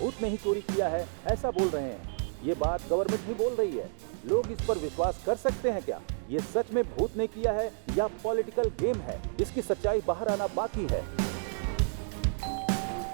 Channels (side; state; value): left; silent; digital silence